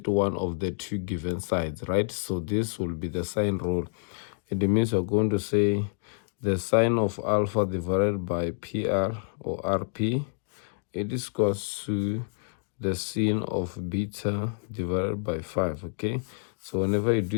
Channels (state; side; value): silent; right; digital silence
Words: one of the two given sides, right? So this will be the sine rule. It means we're going to say the sine of alpha divided by PR or RP, it is equals to the sine of beta divided by 5. Okay, so whenever you